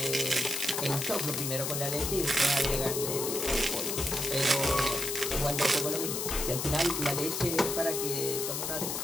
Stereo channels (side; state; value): left; noise; hiss, 2 dB below the sound